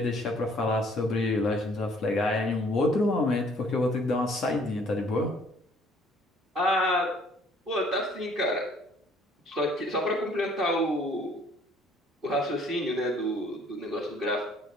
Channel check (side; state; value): both; normal; correlation 0.59